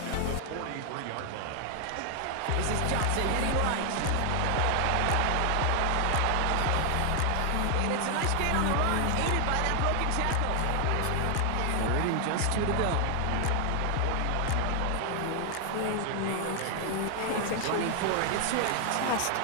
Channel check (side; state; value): both; different; correlation 0.00